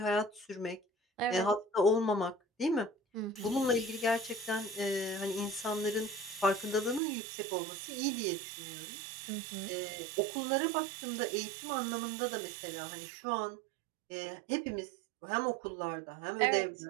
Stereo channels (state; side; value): drops out; left; at 7.0 s